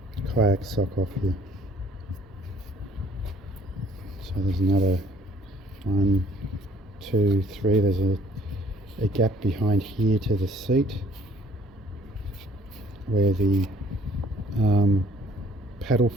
kayak sock off here. So there's another 1, 2, 3, there's a gap behind here to the seat where the paddle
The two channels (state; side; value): normal; both; correlation 0.59